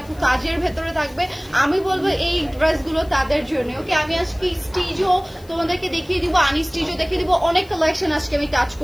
কাজের ভেতরে থাকবে, আমি বলবো এই ড্রেসগুলো তাদের জন্য। ওকে, আমি আজকে স্টিচও তোমাদেরকে দেখিয়ে দিব, আনস্টিচও দেখিয়ে দিব, অনেক কালেকশন আজকে আমি টাচ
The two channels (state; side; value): noise; left; hiss, 26 dB below the sound